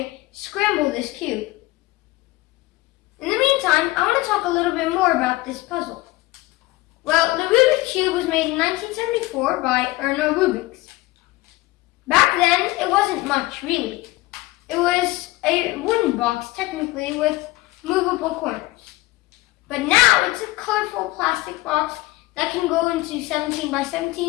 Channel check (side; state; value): right; quieter; 19.7 dB